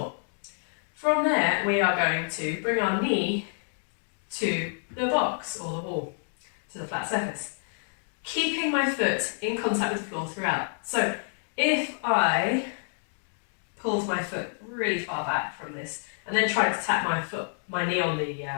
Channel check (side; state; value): right; silent; digital silence